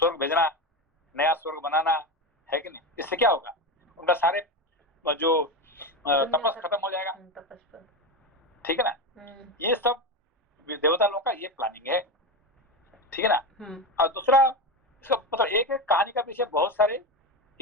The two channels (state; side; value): normal; both; correlation 0.17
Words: भेजना, नया स्वर्ग बनाना है कि नहीं? इससे क्या होगा, उनका सारे जो तपस खत्म हो जाएगा, ठीक है ना? ये सब देवता लोगों का ये प्लानिंग है, ठीक है ना? और दूसरा इसका मतलब एक कहानी का पीछे बहुत सारे